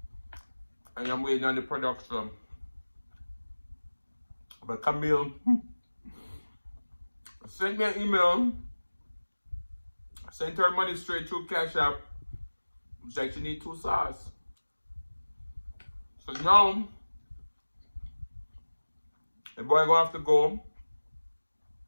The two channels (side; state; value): both; inverted; correlation -1.00